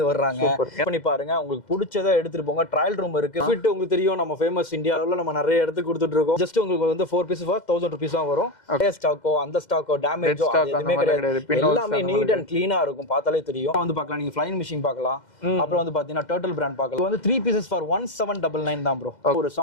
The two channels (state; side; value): late; right; 2.1 ms